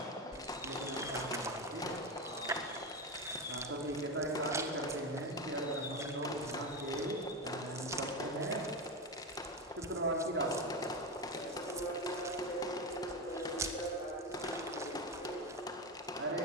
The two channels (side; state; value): both; normal; correlation 0.16